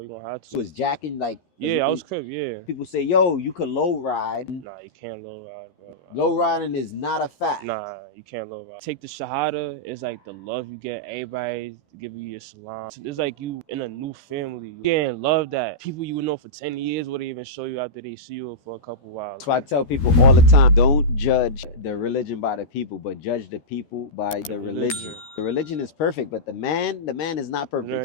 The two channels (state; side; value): late; right; 13 ms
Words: going to have to. You was jacking like... Yeah, I was Crip, yeah. People say, yo, you could low ride. Nah, you can't low ride, bro. Low riding is not a fact. Nah, you can't low ride. Take the Shahada, it's like the love you get. Everybody give you your salam. It's like you in a new family. You getting love that people you would know for 10 years wouldn't even show you after they see you for a couple hours. So I tell people all the time, don't judge the religion by the people, but judge the people by the religion. The religion is perfect, but the man is not